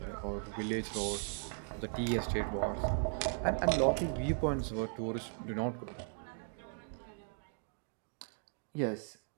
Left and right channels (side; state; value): left; silent; 53 dB below the other